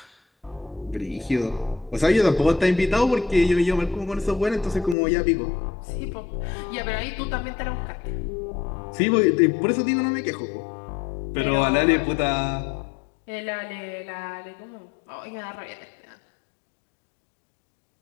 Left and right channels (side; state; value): right; drops out; at 5.0 s